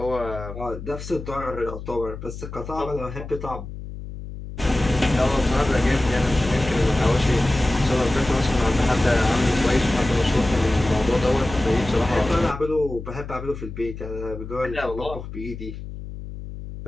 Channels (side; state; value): left; noise; hum, 10 dB below the sound